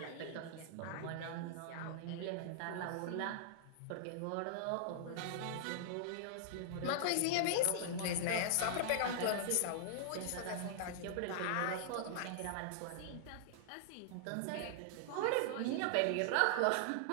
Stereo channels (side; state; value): both; different; correlation -0.01